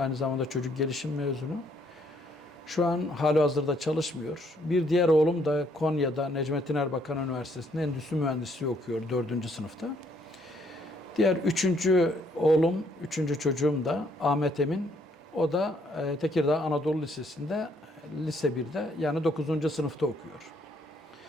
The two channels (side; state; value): both; normal; correlation 0.69